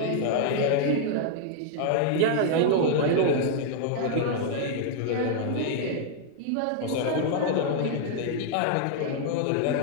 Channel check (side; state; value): both; different; correlation 0.00